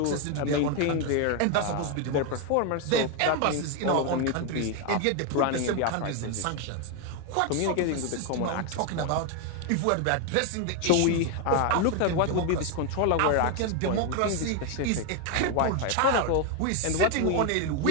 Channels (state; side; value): different; both; correlation 0.01